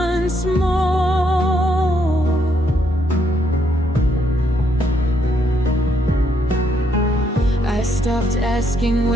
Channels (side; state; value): both; normal; correlation 0.73